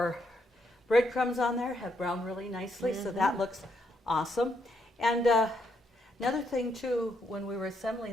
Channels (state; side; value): normal; both; correlation 0.76